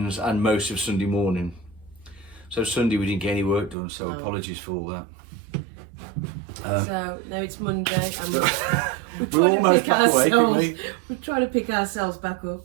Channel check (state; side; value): drops out; left; at 3.8 s